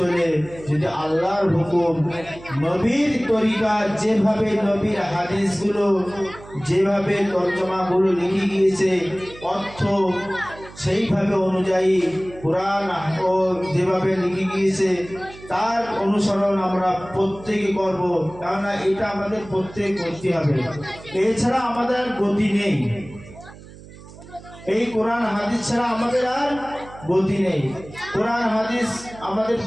যদি আল্লাহর হুকুম, নবীর তরিকা, যেভাবে নবীর হাদিসগুলো যেভাবে তর্জমাগুলো লিখে গিয়েছে, অর্থ সেইভাবে অনুযায়ী কোরআন ও যেভাবে লিখে গিয়েছে তার অনুসরণ আমরা প্রত্যেকে করব। কেননা এটা আমাদের প্রত্যেক করতে হবে, এছাড়া আমাদের আর গতি নেই। এই কোরআন হাদিস ছাড়া আমাদের আর গতি নেই। কোরআন হাদিস আমাদের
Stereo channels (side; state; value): right; noise; hum, 18 dB below the sound